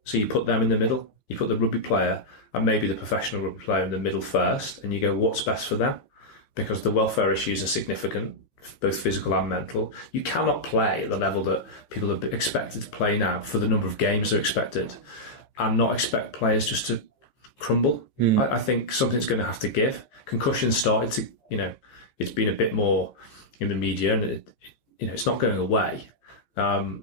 So you put them in the middle. You put the rugby player and maybe the professional rugby player in the middle first, and you go, what's best for them? Because the welfare issues are significant, both physical and mental. You cannot play at the level that people are expected to play now for the number of games they're expected, and not expect players just to crumble. I think something's going to have to give. Concussions started to, it's been a bit more in the media, and it's not going away.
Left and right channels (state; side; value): late; right; 15 ms